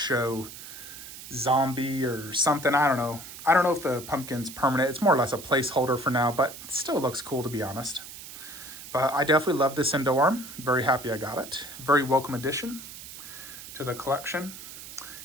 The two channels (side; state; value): right; noise; hiss, 13 dB below the sound